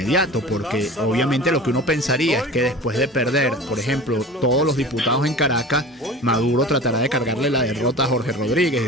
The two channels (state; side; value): normal; both; correlation 0.37